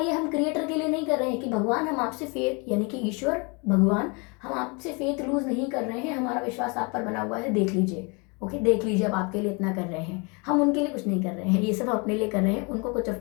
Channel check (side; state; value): right; quieter; 31.3 dB